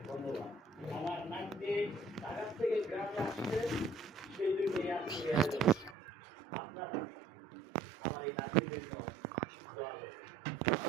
ধন্যবাদ। আমার নামটি ঢাকা থেকে গ্রামে আসছে, সেই জন্য আপনারা আমার এই নাতির জন্য দোয়া করবেন।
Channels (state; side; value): drops out; left; at 6.0 s